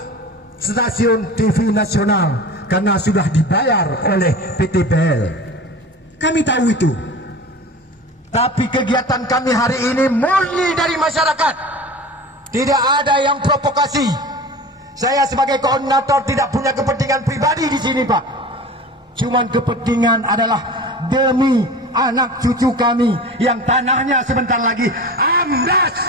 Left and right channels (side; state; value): both; normal; correlation 0.35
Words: stasiun TV nasional karena sudah dibayar oleh PT BEL. Kami tahu itu. Tapi kegiatan kami hari ini murni dari masyarakat. Tidak ada yang provokasi. Saya sebagai koordinator tidak punya kepentingan pribadi di sini Pak. Cuman kepentingan adalah demi anak cucu kami yang tanahnya sebentar lagi amblas.